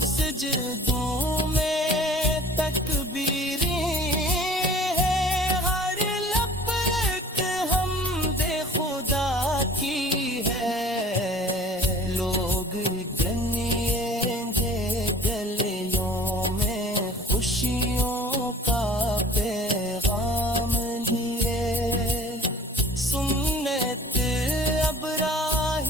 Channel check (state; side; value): normal; both; correlation 0.48